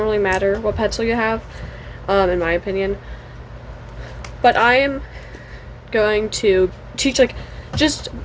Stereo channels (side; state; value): both; identical; correlation 1.00